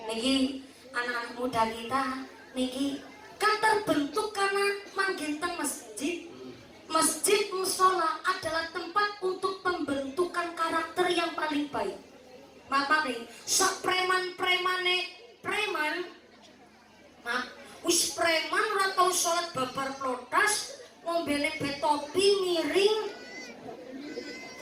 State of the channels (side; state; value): both; identical; correlation 1.00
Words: Niki anak-anak muda kita niki kan terbentuk karena manggen teng masjid. Masjid musola adalah tempat untuk pembentukan karakter yang paling baik. Maka nih, sak preman-premane preman, wis preman ora tau salat babar plotas, ngombene betopi miring.